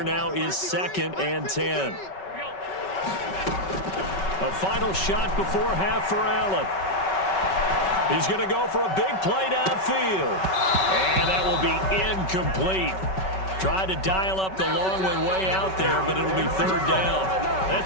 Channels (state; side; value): late; right; 5.3 ms